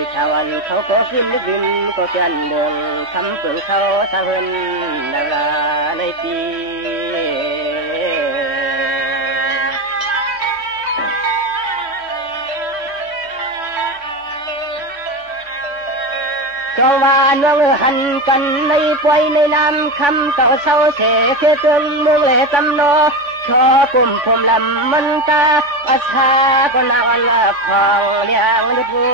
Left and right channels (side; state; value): left; late; 3.5 ms